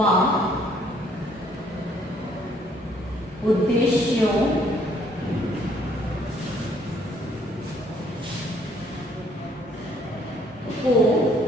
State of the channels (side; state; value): both; normal; correlation 0.64